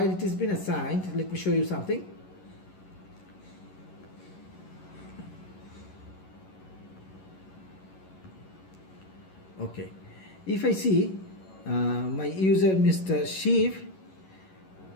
it has been assigned, let me show you something. Okay, if I see my user Mr. Shiv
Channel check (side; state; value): right; late; 11 ms